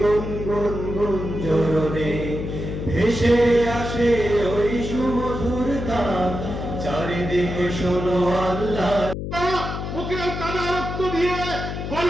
গুঞ্জরণে ভেসে আসে ওই সুমধুর তান, চারিদিকে শোনো আল্লাহ। মুখে কাদা রক্ত দিয়ে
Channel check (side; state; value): left; noise; hum, 5 dB below the sound